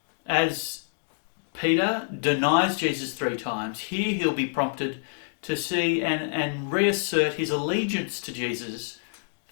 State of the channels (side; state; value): right; silent; digital silence